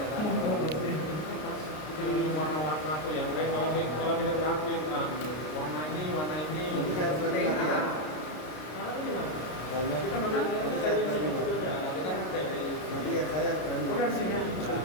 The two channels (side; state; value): right; late; 33 ms